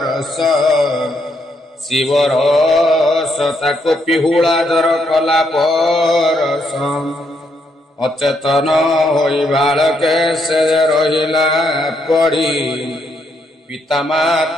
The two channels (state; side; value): normal; both; correlation 0.76